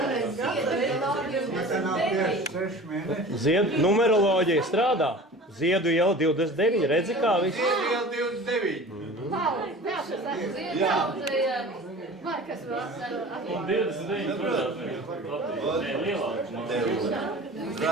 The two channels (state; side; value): normal; both; correlation 0.39